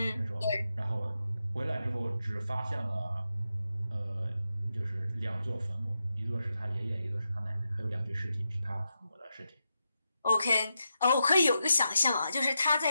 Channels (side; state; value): both; inverted; correlation -0.87